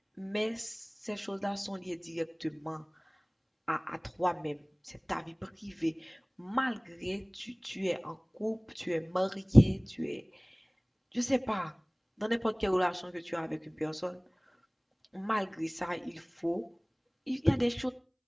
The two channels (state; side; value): identical; both; correlation 1.00